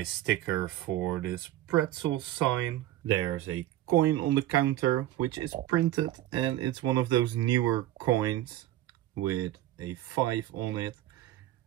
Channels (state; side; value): quieter; left; 14.0 dB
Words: sticker for this pretzel sign. There's a coin on the counter, which is printed, and it's one of those newer coins with a 5 on it.